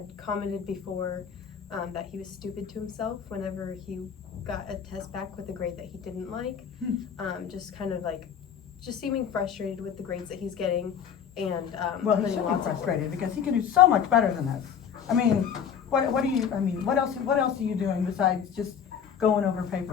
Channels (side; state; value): right; quieter; 7.8 dB